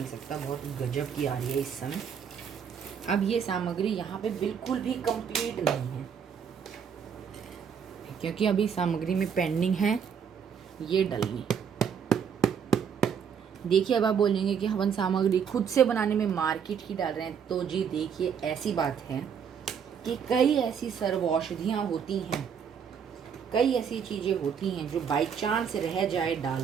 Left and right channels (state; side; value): quieter; left; 7.3 dB